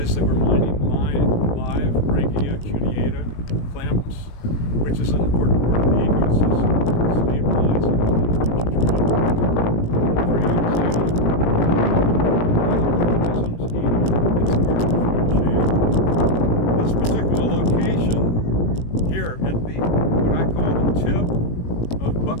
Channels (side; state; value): right; late; 18 ms